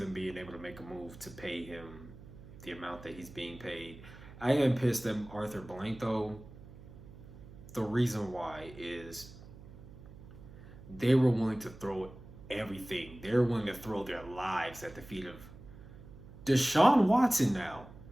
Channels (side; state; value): right; noise; hum, 17 dB below the sound